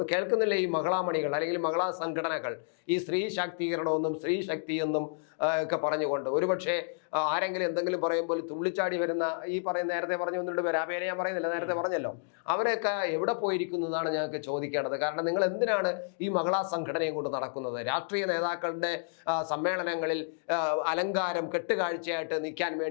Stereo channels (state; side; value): silent; right; digital silence